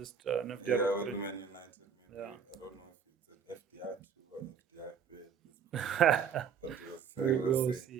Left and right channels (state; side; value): quieter; left; 7.1 dB